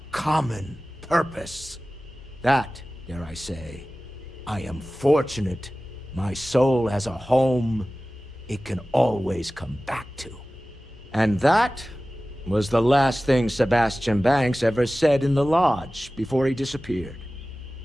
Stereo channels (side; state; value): both; normal; correlation 0.97